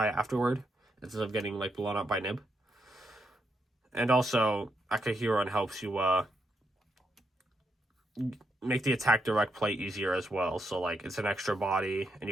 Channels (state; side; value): normal; both; correlation 0.81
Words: afterward, instead of getting like blown up by nib. And also Akahiron helps you make the attack direct play easier as well. So like it's an extra body, and